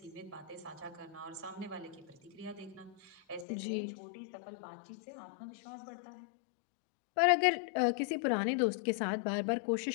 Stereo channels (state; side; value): drops out; right; at 3.5 s